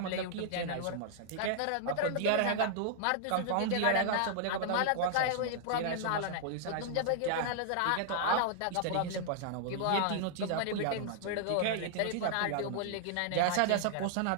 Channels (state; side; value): different; both; correlation -0.01